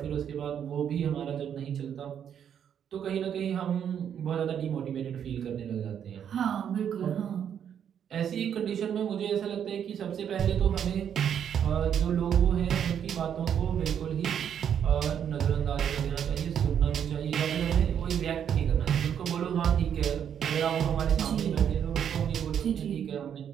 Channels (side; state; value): left; quieter; 8.7 dB